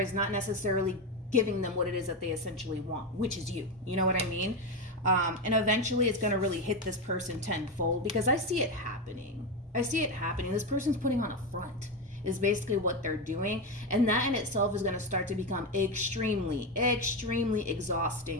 not necessarily giving them what it is that they essentially want, which is you. You know what I mean? And eventually it's going to really hit this person tenfold, because I see it happening. I see it happening. This person's putting on a front is basically what they're doing. And that in itself is going to start to become extremely, extremely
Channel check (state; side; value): normal; both; correlation 0.13